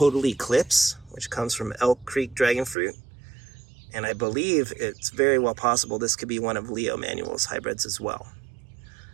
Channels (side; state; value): left; drops out; at 2.8 s